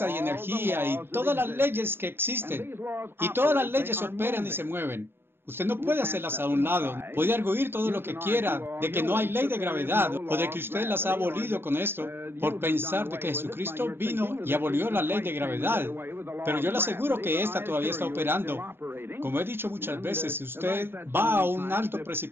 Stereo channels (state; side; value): late; left; 0.11 ms